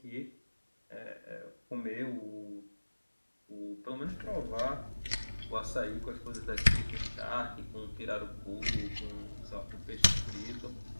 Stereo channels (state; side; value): inverted; both; correlation -1.00